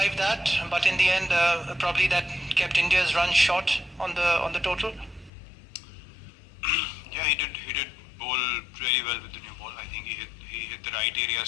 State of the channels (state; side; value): drops out; right; at 5.3 s